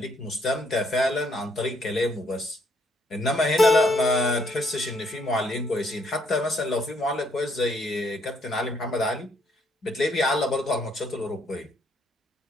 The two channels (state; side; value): normal; both; correlation 0.69